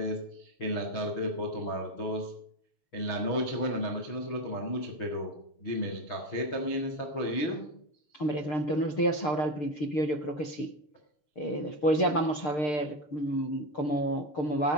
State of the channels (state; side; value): late; right; 6.7 ms